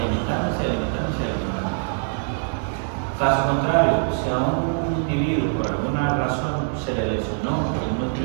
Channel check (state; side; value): silent; left; 63 dB below the other